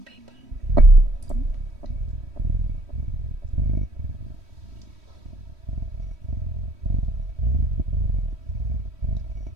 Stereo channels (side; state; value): left; late; 3.1 ms